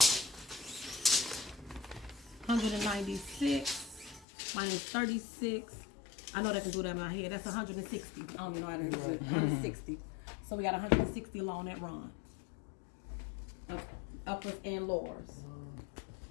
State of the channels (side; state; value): right; drops out; at 4.2 s